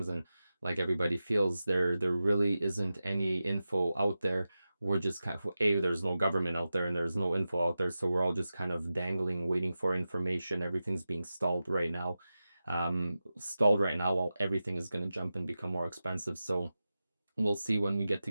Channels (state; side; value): inverted; both; correlation -0.93